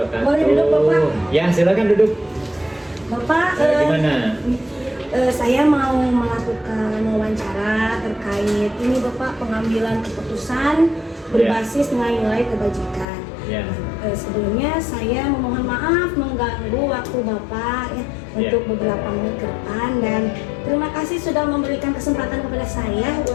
Boleh duduk, Bapak? Ya, silakan duduk. Bapak, Gimana? saya mau melakukan wawancara terkait ini Bapak, pengambilan keputusan berbasis nilai-nilai kebajikan. Ya. Sebelumnya saya memohon maaf mengganggu waktu Bapak ya untuk beberapa menit ke depan, dan terima kasih sudah memberikan kesempatan kepada saya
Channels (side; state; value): right; drops out; at 13.1 s